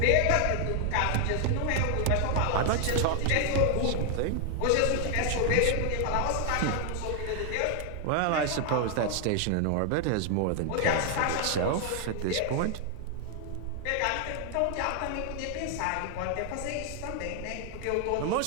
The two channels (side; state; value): both; different; correlation 0.00